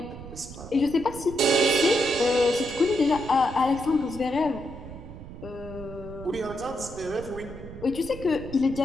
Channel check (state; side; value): noise; right; rumble, 13 dB below the sound